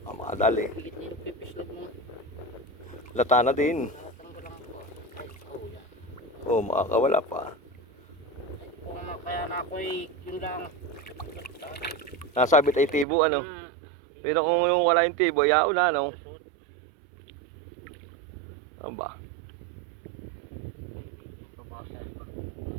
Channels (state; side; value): drops out; left; at 13.1 s